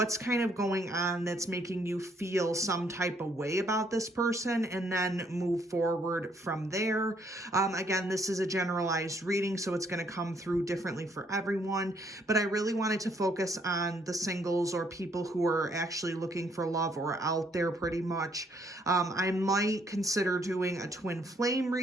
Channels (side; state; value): both; normal; correlation 0.68